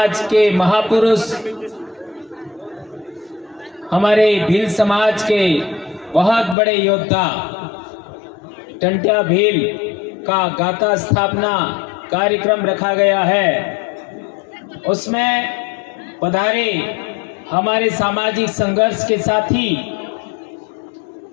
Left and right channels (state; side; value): drops out; right; at 6.6 s